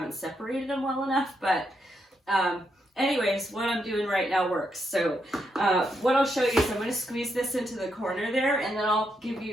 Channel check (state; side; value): normal; both; correlation 0.80